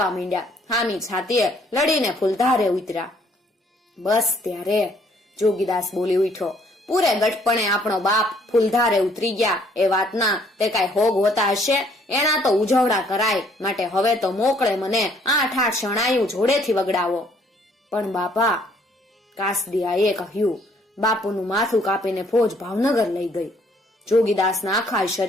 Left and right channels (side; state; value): both; normal; correlation 0.64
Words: માંડ્યા. હામી છાતીએ લડીને ફૂલધારે ઉતર્યા. બસ ત્યારે જોગીદાસ બોલી ઉઠ્યો, પૂરે ગટપણે આપણો બાપ ફૂલધારે ઉતરી ગયા એ વાતના તે કાંઈ હોગ હોતા હશે? એના તો ઉજવડા કરાય, માટે હવે તો મોકળે મને 8 શણાયું જોડેથી વગડાવો. પણ બાપા, કાસદિયાએ કહ્યું. બાપુનું માથું કાપીને ફોજ ભાવનગર લઈ ગઈ. જોગીદાસના આખા